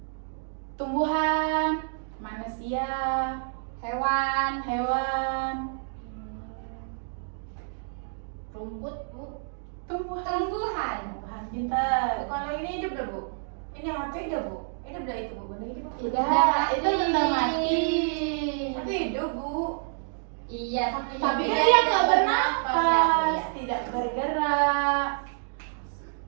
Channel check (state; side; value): silent; left; digital silence